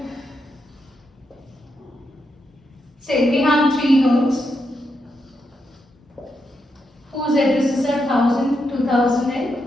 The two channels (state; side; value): normal; both; correlation 0.83